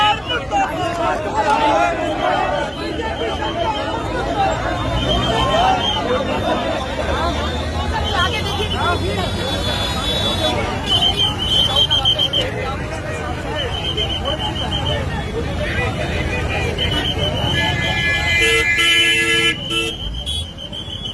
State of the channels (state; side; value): identical; both; correlation 1.00